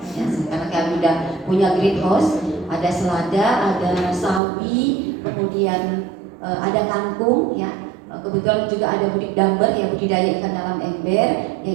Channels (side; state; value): left; drops out; at 4.4 s